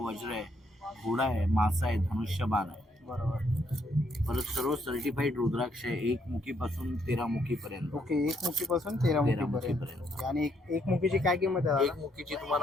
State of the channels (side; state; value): both; normal; correlation 0.72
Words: आहे, घोडा आहे, मासा आहे, धनुष्यबाण आहे. बरोबर. परत सर्व सर्टिफाईड रुद्राक्ष आहे, 1 मुखीपासून 13 मुखीपर्यंत. ओके. 1 मुखीपासून 13 मुखीपर्यंत. मुखीपर्यंत. आणि एक मुखीची काय किंमत आहे? 1 मुखीची